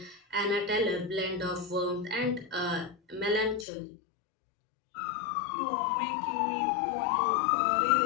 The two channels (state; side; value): drops out; right; at 3.7 s